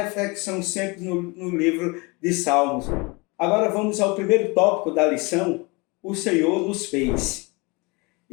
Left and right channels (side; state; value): right; quieter; 27.2 dB